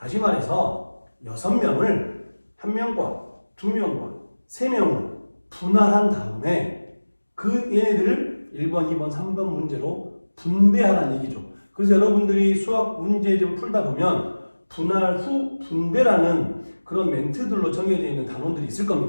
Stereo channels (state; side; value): inverted; both; correlation -1.00